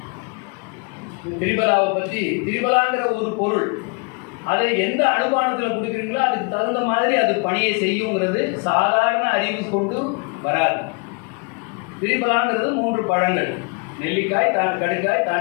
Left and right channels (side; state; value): right; quieter; 32.5 dB